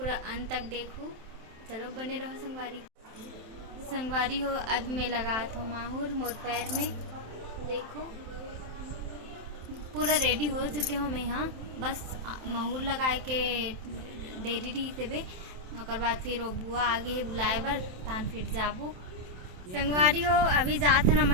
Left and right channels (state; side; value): late; left; 27 ms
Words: अंत तक देखो। चलो बने रहो संगवारी हो। अब मैं लगा हूँ माहौर मोर पैर में, देखो पूरा रेडी हो चुके हो मैं। हाँ, बस महूर लगाए के देरी रही थे ओकर बाद फिर वो बुआ आगे है बुलाए बर तान फिर जाबो संगवारी हो। अभी जात न